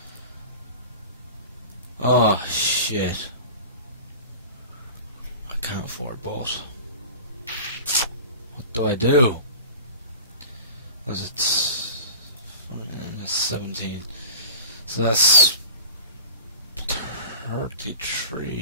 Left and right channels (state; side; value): inverted; both; correlation -0.36